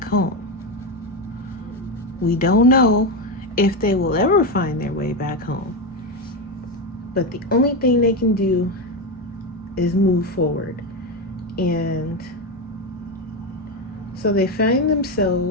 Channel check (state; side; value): normal; both; correlation 0.12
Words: home. We don't know if they will ever find their way back home. But the only thing they can do is move forward. And so they find